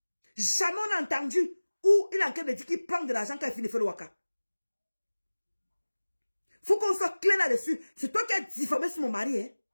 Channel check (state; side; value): inverted; both; correlation -1.00